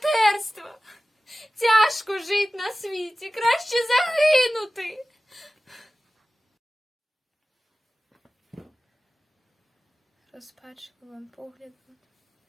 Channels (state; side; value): normal; both; correlation 0.96